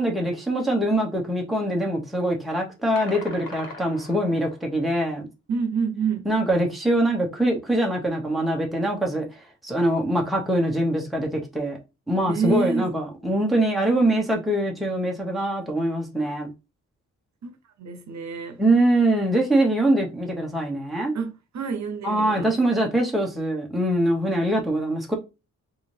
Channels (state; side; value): normal; both; correlation 0.75